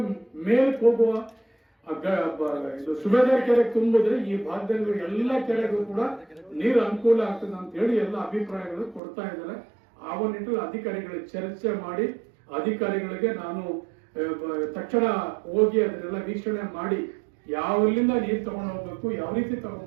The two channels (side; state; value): left; drops out; at 9.0 s